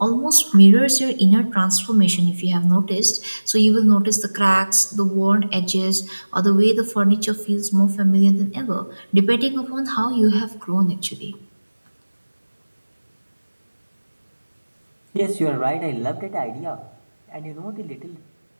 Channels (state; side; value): inverted; both; correlation -1.00